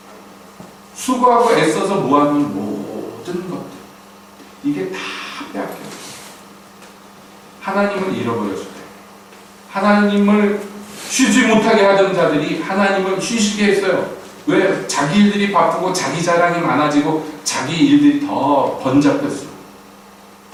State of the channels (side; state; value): both; identical; correlation 1.00